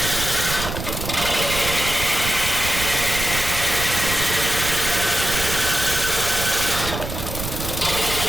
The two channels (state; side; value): noise; right; rumble, 6 dB below the sound